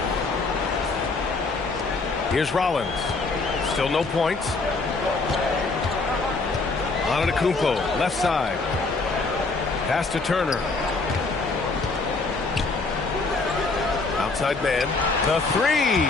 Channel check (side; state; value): right; quieter; 3.7 dB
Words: Here's Rollins. Still no points. Antetokounmpo, left side. Pass to Turner. Outside man. The 3.